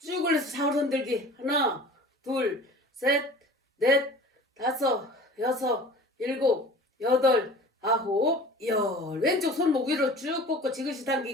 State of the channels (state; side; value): normal; both; correlation 0.42